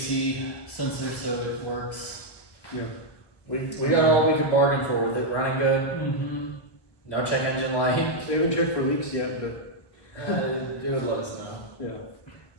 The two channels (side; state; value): right; late; 1.1 ms